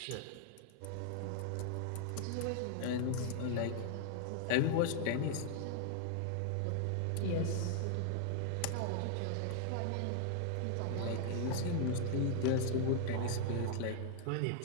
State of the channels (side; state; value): both; different; correlation 0.00